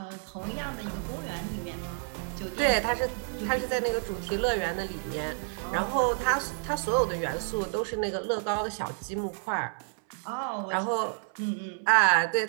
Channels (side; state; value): left; silent; 58 dB below the other